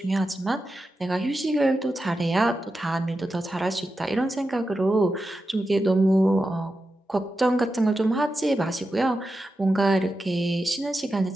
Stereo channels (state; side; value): normal; both; correlation 0.90